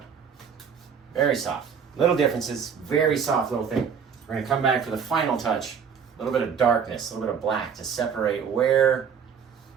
Very soft. Little differences, very soft little thing. We're going to come back for the final touch. A little bit of darkness, a little bit of black to separate where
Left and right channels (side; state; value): left; quieter; 6.9 dB